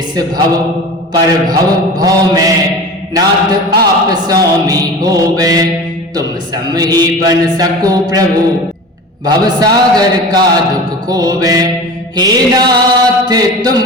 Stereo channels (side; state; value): both; normal; correlation 0.34